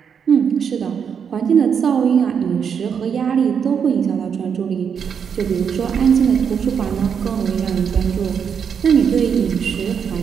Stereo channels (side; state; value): left; quieter; 7.1 dB